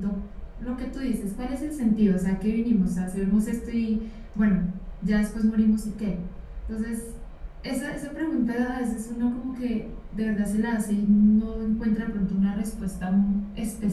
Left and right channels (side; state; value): both; identical; correlation 1.00